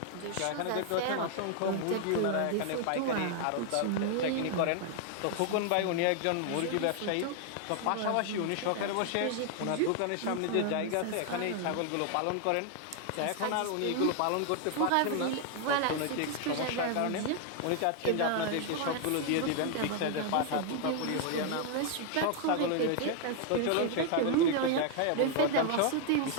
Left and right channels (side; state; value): both; different; correlation 0.00